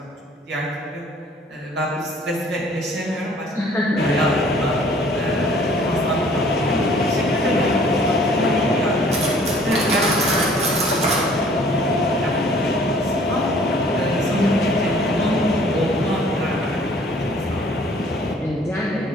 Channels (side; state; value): both; normal; correlation 0.55